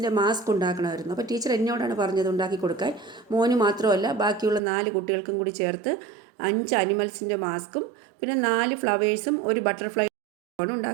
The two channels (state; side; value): drops out; left; at 4.6 s